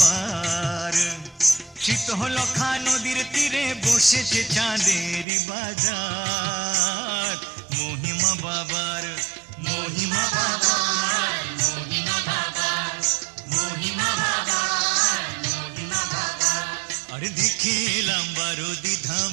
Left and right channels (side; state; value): left; drops out; at 5.2 s